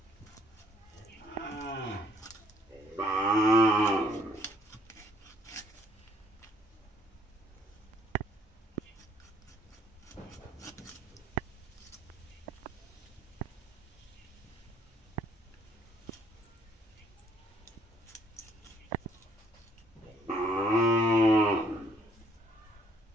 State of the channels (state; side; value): normal; both; correlation 0.63